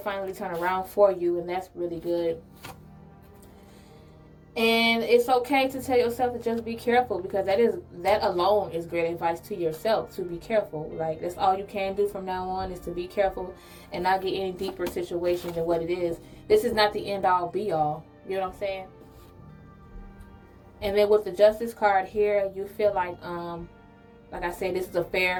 turn around for you, and that's really good. And it's okay to tell yourself to just be careful, because that alone is great advice to yourself, to be careful. That's all you can do from now on, is to be careful and not get any deeper situations than what it is. This is not the end all be all. You know what I'm saying? And then with the Justice card here, you feel like I said, this is a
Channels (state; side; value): identical; both; correlation 1.00